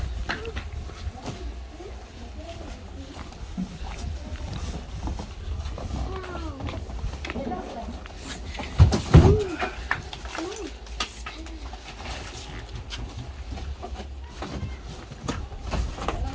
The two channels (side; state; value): both; identical; correlation 1.00